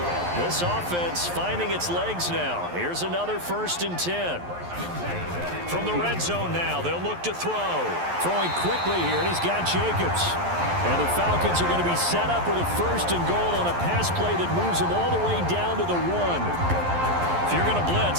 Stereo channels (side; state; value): left; late; 11 ms